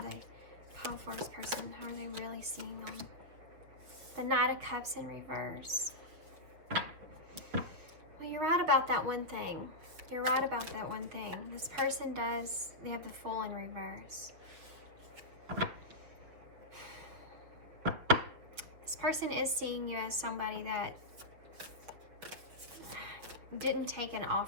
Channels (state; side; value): late; left; 6.6 ms